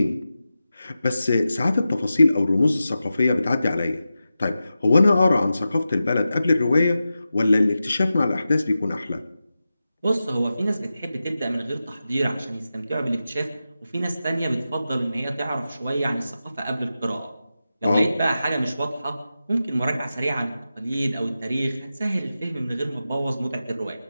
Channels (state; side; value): inverted; both; correlation -0.92